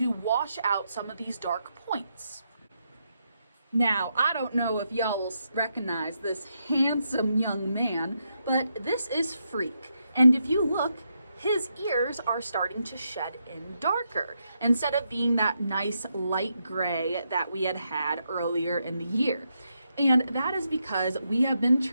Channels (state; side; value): inverted; both; correlation -0.82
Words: wash out some of these dark points. Now, I don't know if y'all will recognize this handsome young man, but this is Freak. And if you look, his ears are starting to shed in darker instead of being that nice light gray that we had earlier in the year. And that is because we have been